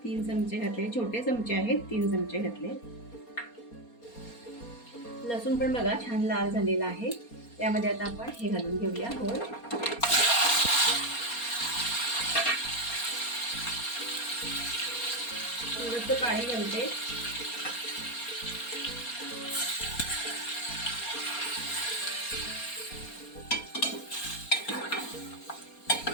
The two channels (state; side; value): late; right; 4.3 ms